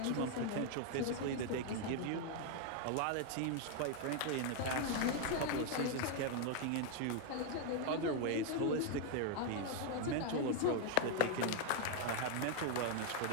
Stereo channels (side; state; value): both; different; correlation 0.00